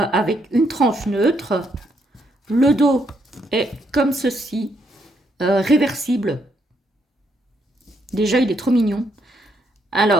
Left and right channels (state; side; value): normal; both; correlation 0.75